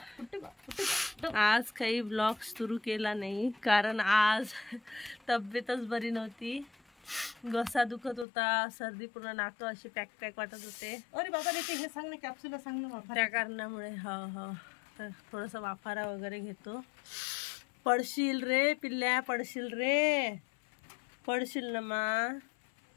आज काही ब्लॉग सुरू केला नाही कारण आज तब्येतच बरी नव्हती. घसा दुखत होता, सर्दी, पूर्ण नाक अशी पॅक पॅक वाटत होते. अरे बाबा हे सांग ना, कॅप्सूल सांग ना. त्या कारणामुळे तर थोडंसं वाफारा वगैरे घेतो. पडशील रे पिल्ल्या, पडशील रे, पडशील ना मा.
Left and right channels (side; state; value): right; drops out; at 8.2 s